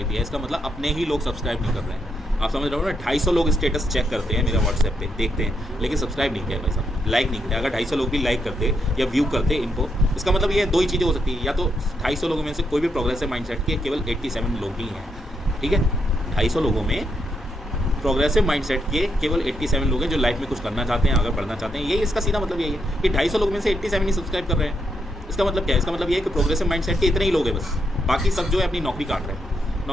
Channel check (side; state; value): both; normal; correlation 0.79